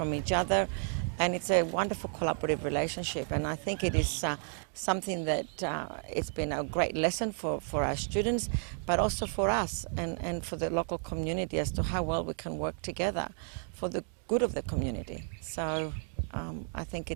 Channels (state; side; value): silent; left; 56 dB below the other